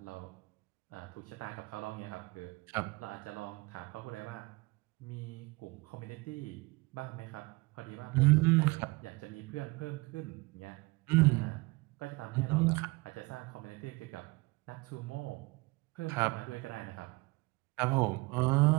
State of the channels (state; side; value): quieter; left; 24.9 dB